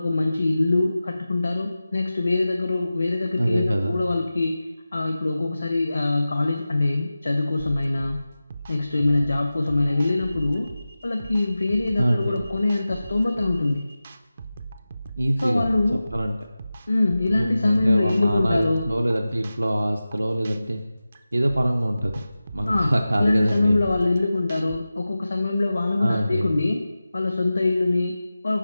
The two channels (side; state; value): both; inverted; correlation -0.95